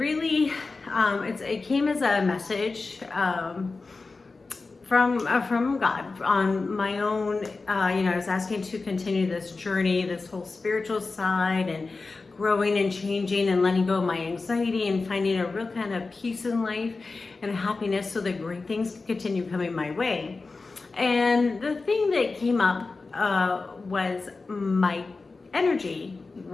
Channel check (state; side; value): quieter; right; 3.9 dB